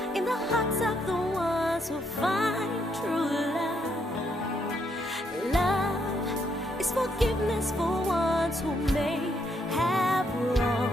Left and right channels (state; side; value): normal; both; correlation 0.75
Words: in the hearts of the ones who find true love. Love is forgiveness for ones who may have